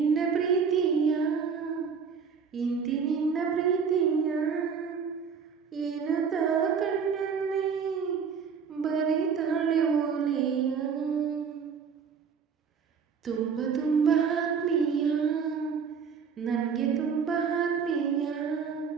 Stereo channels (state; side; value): quieter; left; 6.3 dB